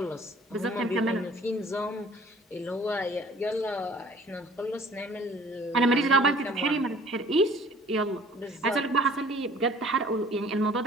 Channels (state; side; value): normal; both; correlation 0.52